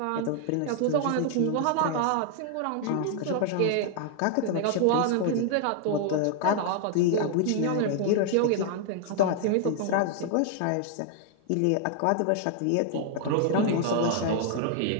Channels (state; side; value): different; both; correlation 0.00